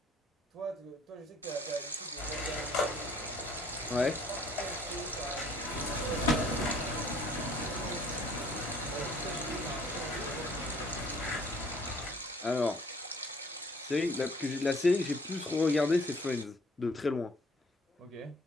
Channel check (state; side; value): normal; both; correlation 0.57